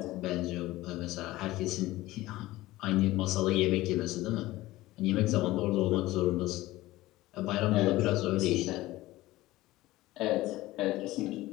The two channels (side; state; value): right; quieter; 17.6 dB